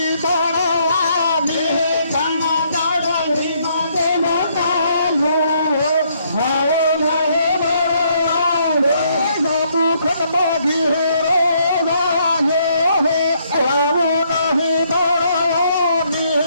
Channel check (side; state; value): both; inverted; correlation -0.70